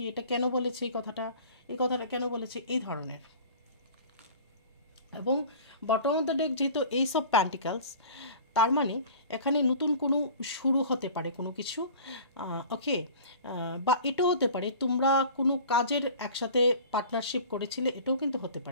এটা কেন বলেছে, এই কথাটা কেন বলেছে, এই ধরনের। এবং বটম অফ দ্য ডেক যেহেতু এইস অফ প্যান্টিকালস, তার মানে এখানে নতুন কোনো শুরু হতে পারে কোনো কিছু। ওকে, বা এটাও হতে পারে তোমরা কোনো কাজের একসাথে পার্টনারশিপ করেছিলে, এটাও কিন্তু হতে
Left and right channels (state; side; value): inverted; both; correlation -0.42